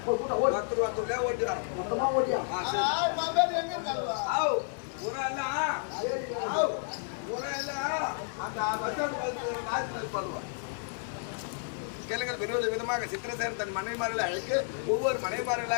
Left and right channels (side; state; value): right; silent; 57 dB below the other